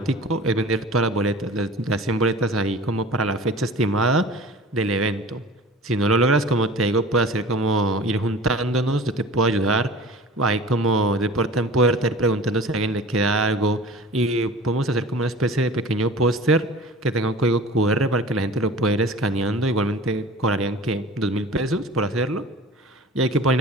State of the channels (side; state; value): both; normal; correlation 0.41